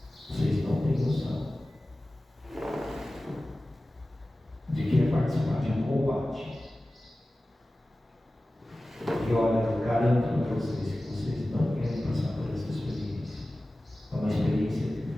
Vocês não têm noção de que é participar de um combate. E olha, eu garanto para vocês que vocês não querem passar por essa experiência. É uma experiência que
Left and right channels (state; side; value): normal; both; correlation 0.96